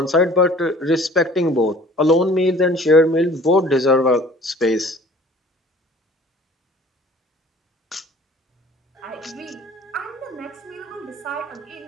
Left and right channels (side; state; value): both; normal; correlation 0.50